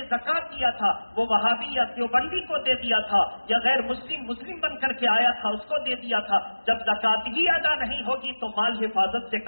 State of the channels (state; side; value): inverted; both; correlation -1.00